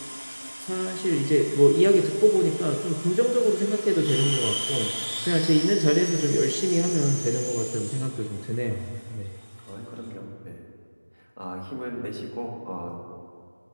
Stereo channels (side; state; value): both; inverted; correlation -1.00